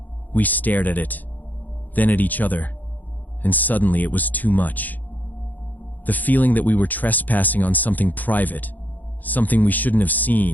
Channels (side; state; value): right; late; 0.083 ms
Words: We stared at it, then at each other, and suddenly it was too much. The feeling that we were trespassing on something private, something we shouldn't have